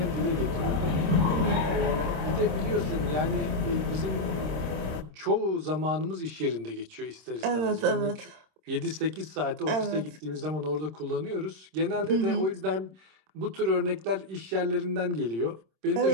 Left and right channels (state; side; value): late; left; 26 ms